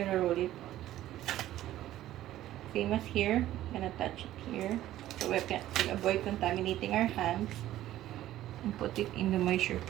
roll it. Same as here. I'm gonna touch it here so we can avoid contaminating our hands. And put it in the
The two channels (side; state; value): left; quieter; 13.9 dB